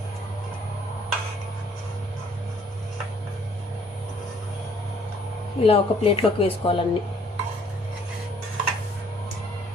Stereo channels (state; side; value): normal; both; correlation 0.61